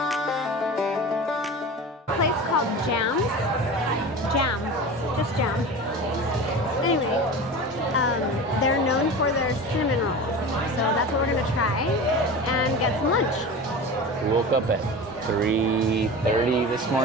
A place called Jam. Just Jam. Anyway, they're known for their cinnamon rolls. So that's what we're gonna try and get some lunch. We woke up at 3:30 this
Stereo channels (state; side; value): normal; both; correlation 0.32